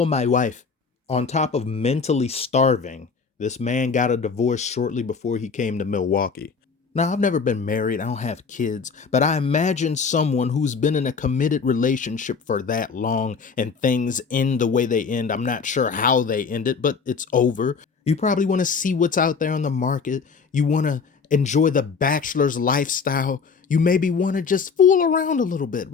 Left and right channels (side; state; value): right; quieter; 5.4 dB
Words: my wife. On top of mentally starving, this man got a divorce shortly before he came to Milwaukee. Now, I've never been married. I don't have kids. But I imagine someone who's been in a committed relationship for that long and things end the way they end. I'm not sure how they end it, but it's over. You probably want to see what's out there on the market. You want to enjoy the bachelor's lifestyle. You maybe want to just fool around a little bit.